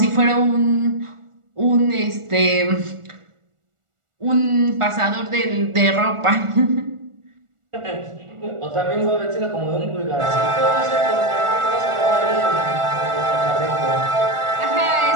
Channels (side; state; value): left; late; 1.4 ms